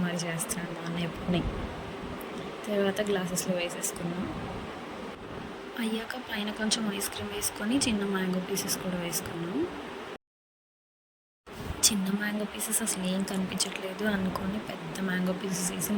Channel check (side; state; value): both; identical; correlation 1.00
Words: మరి చేస్తున్నాడు మా అన్నయ్య ఎప్పుడుని. తర్వాత గ్లాసెస్లో వేసేసుకున్నాం. అయ్యాక పైన కొంచెం ఐస్ క్రీమ్ వేసుకొని చిన్న మ్యాంగో పీసెస్ కూడా వేసుకున్నాం. చిన్న మ్యాంగో పీసెస్ అసలు ఏం కనిపించట్లేదు అనుకొని పెద్ద మ్యాంగో పీసెస్ వేసి